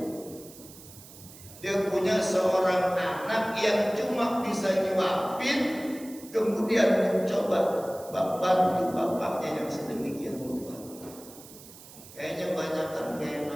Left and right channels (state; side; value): noise; right; hiss, 19 dB below the sound